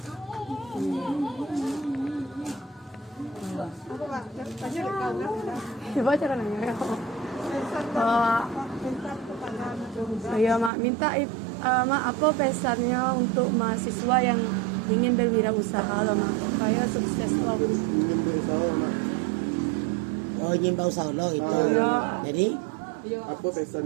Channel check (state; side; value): drops out; left; at 10.7 s